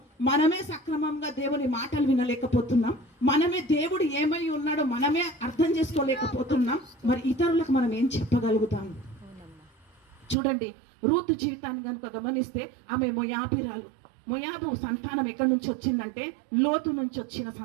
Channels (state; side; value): drops out; left; at 10.4 s